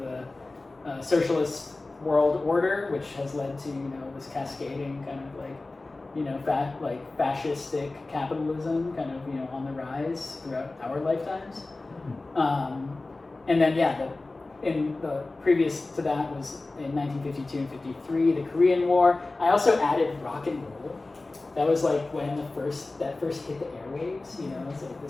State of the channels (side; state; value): right; quieter; 3.2 dB